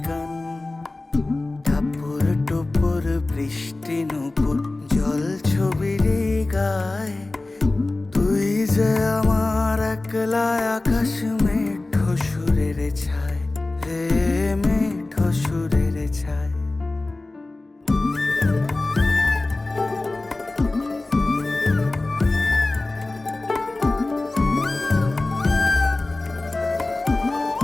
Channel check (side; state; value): right; quieter; 3.0 dB